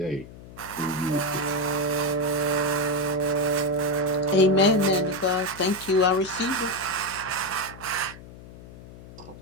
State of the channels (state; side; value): noise; left; hum, 17 dB below the sound